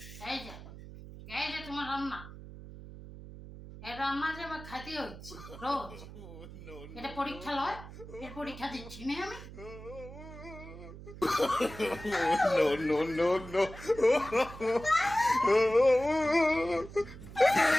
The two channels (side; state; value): right; noise; hum, 14 dB below the sound